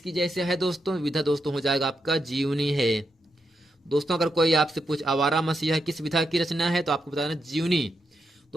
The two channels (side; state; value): both; normal; correlation 0.83